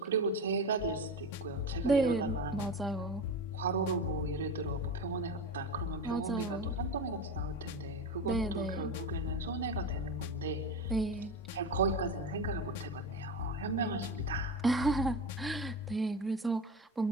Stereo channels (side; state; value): both; normal; correlation 0.24